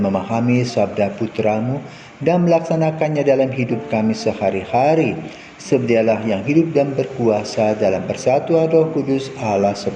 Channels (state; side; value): identical; both; correlation 1.00